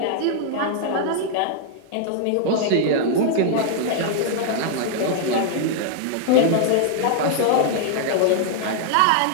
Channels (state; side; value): different; both; correlation -0.01